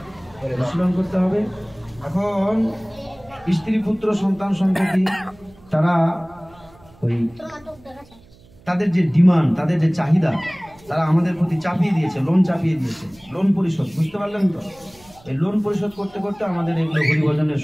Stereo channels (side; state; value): right; noise; hum, 26 dB below the sound